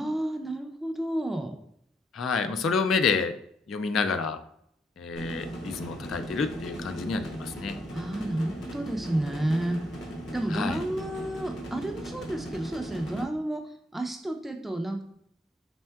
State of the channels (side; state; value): both; normal; correlation 0.74